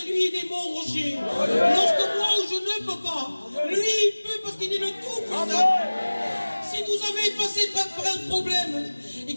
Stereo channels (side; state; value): both; inverted; correlation -1.00